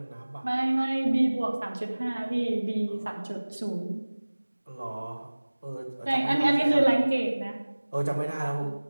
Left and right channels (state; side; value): inverted; both; correlation -1.00